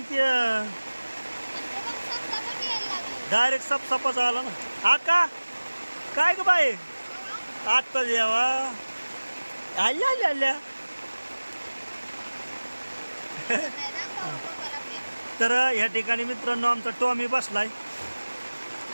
ते डायरेक्ट सपसापाच आला ना। आका काय ग बाई आता जेवा आल्या तर या ठिकाणी मित्रांनो आमचा टॉमी बसलाय।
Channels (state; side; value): inverted; both; correlation -1.00